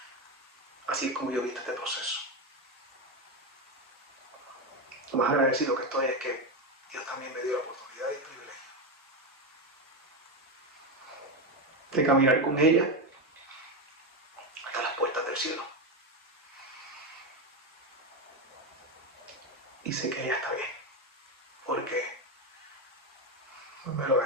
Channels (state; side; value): normal; both; correlation 0.12